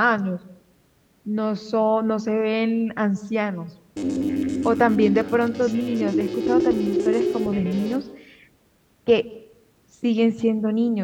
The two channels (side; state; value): both; identical; correlation 1.00